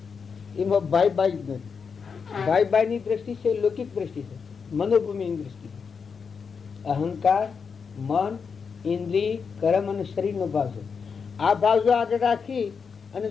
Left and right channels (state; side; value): quieter; right; 5.8 dB